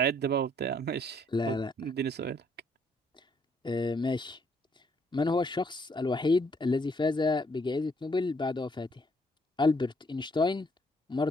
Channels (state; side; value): normal; both; correlation 0.68